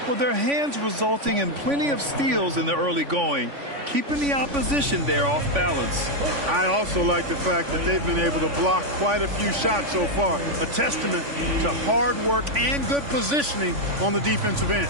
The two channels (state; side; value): late; left; 3.5 ms